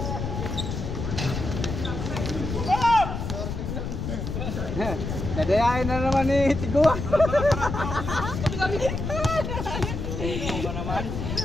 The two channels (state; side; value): noise; left; rumble, 4 dB below the sound